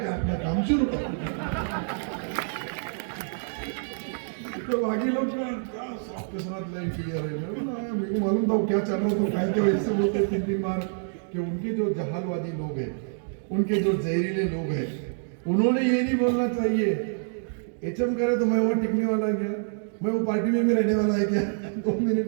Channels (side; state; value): left; silent; digital silence